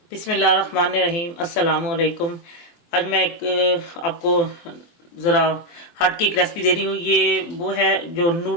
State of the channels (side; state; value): right; late; 23 ms